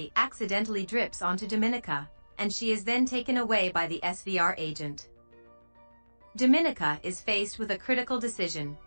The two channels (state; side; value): inverted; both; correlation -1.00